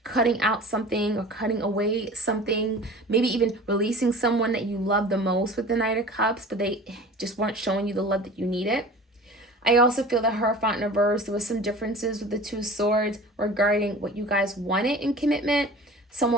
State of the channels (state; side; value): normal; both; correlation 0.40